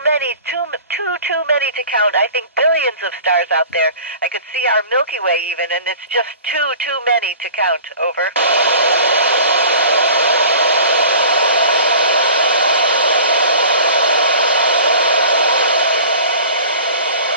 many, too many to count. I think billions of stars out there. I could see our Milky Way even, and it's just too many to count. Over.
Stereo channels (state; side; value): inverted; both; correlation -0.42